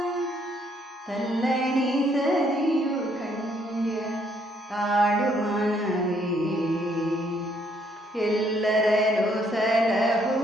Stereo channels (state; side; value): normal; both; correlation 0.69